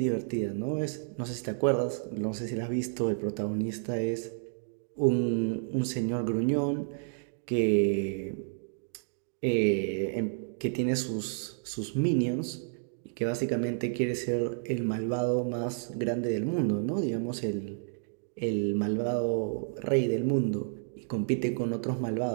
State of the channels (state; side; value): silent; left; digital silence